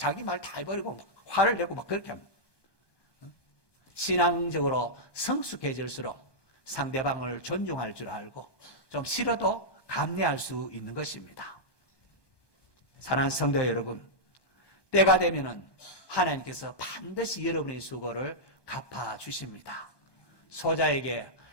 말 다 해버리고 막 화를 내고 막 그렇게 합니다. 신앙적으로 성숙해질수록 상대방을 존중할 줄 알고 좀 싫어도 감내할 수 있는 것입니다. 사랑하는 성도 여러분, 때가 되면은 하나님께서 반드시 여러분의 수고를 갚아주십니다. 소자에게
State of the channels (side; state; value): right; late; 1.2 ms